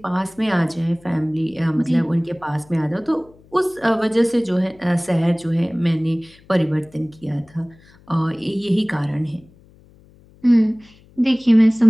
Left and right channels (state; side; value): noise; left; hum, 27 dB below the sound